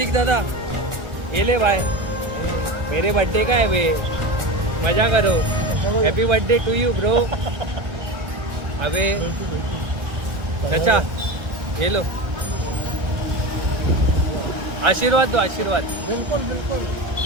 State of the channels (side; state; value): left; late; 1.4 ms